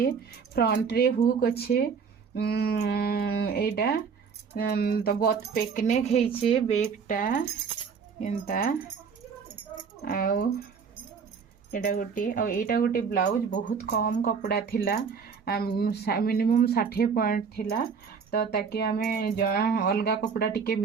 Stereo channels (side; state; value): left; quieter; 6.0 dB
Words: फ्रंट रे हुक अच्छे एटा तो बोथ पेक नेक हेइछे बेकटा एंता आउ एटा गोटे ब्लाउज बहुत कम कपड़ा थिला मिनिमम 60 पॉइंट थिला तो ताकि आमे अलगा कपड़ा टिके